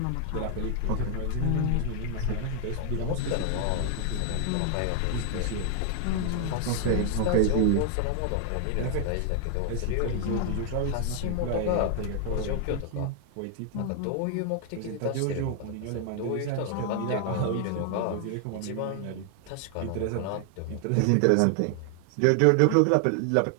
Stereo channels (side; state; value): both; different; correlation 0.00